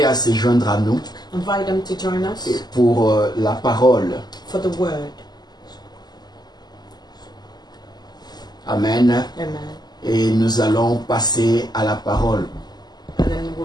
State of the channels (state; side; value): late; right; 0.20 ms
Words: à se joindre à nous Invite them to join us pour la parole. for the word. Amen. Amen. Et nous allons passer à la parole. And then